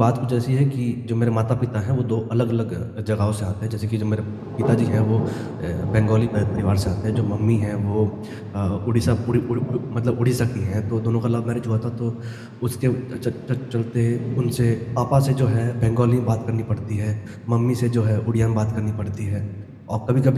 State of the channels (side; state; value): both; identical; correlation 1.00